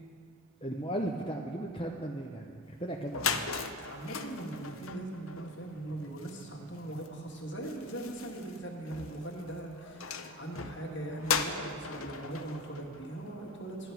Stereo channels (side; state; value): both; normal; correlation 0.29